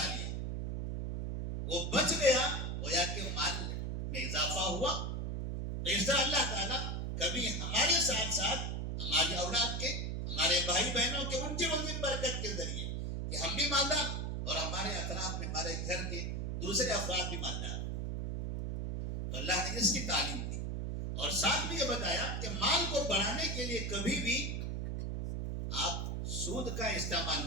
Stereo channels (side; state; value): right; noise; hum, 2 dB below the sound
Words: لیا، وہ بچ گیا، گویا کہ مال میں اضافہ ہوا۔ تو اس طرح اللہ تعالیٰ کبھی ہمارے ساتھ ساتھ ہماری اولاد کے، ہمارے بھائی بہنوں کے، ان کی روزی برکت کے ذریعے کہ ہم بھی مالدار اور ہمارے اطراف میں ہمارے گھر کے دوسرے افراد بھی مالدار۔ تو اللہ نے اس کی تعلیم دی اور ساتھ بھی یہ بتایا کہ مال کو بڑھانے کے لیے کبھی بھی آپ سود کا استعمال